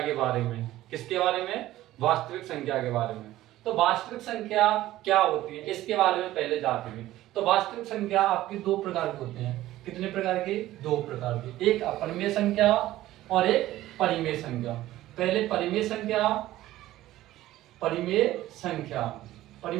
के बारे में। किसके बारे में? वास्तविक संख्या के बारे में। तो वास्तविक संख्या क्या होती है इसके बारे में पहले जानते हैं। तो वास्तविक संख्या आपकी दो प्रकार की होती हैं। कितने प्रकार की? दो प्रकार की। एक अपरिमेय संख्या और एक परिमेय संख्या। पहले परिमेय संख्या, परिमेय संख्या,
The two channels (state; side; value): quieter; left; 15.2 dB